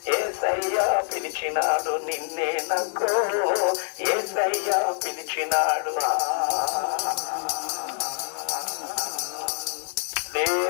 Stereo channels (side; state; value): right; silent; digital silence